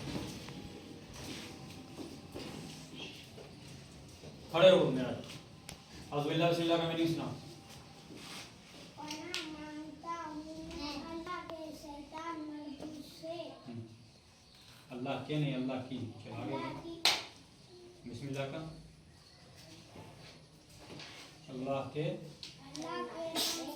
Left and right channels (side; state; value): both; identical; correlation 1.00